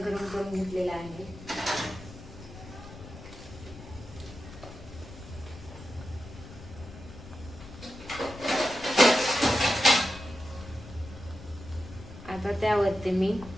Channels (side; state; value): left; noise; rumble, 15 dB below the sound